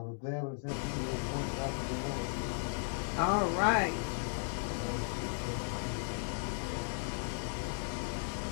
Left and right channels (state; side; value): silent; right; 54 dB below the other